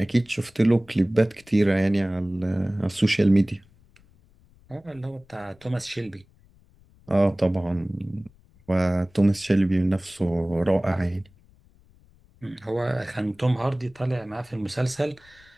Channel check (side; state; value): left; noise; rumble, 29 dB below the sound